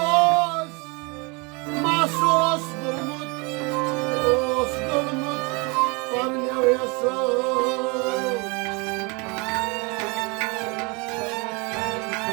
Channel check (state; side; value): quieter; left; 29.5 dB